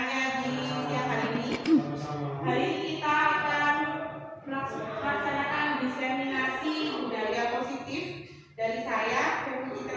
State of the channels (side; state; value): both; identical; correlation 1.00